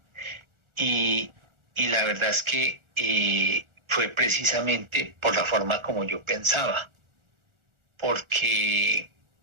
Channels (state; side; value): late; left; 1.4 ms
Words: y, y la verdad es que fue precisamente por la forma como yo pensaba, porque